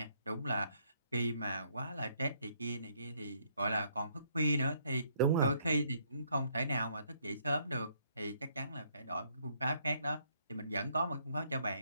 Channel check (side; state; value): both; inverted; correlation -0.69